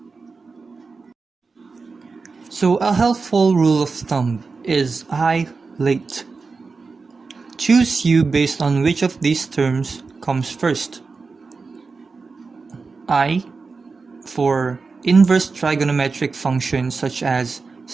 So a helpful rule of thumb is I late. Choose u based on which of these terms comes first. I for inverse trigonometric functions such as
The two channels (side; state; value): left; quieter; 4.4 dB